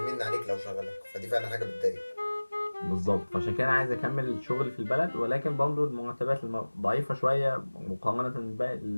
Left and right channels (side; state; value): both; inverted; correlation -1.00